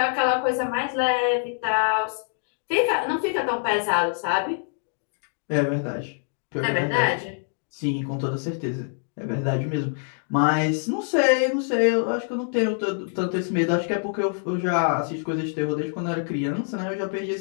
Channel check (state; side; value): silent; right; digital silence